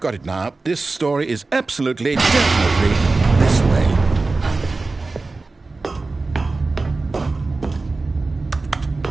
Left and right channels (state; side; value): quieter; left; 3.6 dB